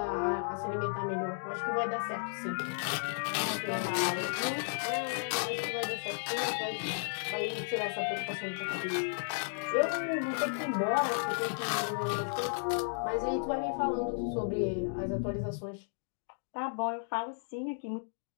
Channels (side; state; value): right; silent; digital silence